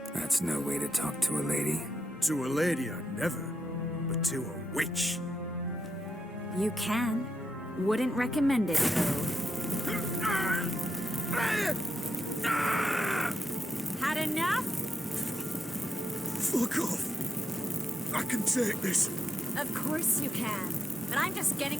That's no way to talk to a lady. To a lady, I never. But to a witch. You can. Wouldn't recommend it, though. Had enough? Fuck off. I can take this. Of course you can. But I'm just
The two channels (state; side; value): normal; both; correlation 0.85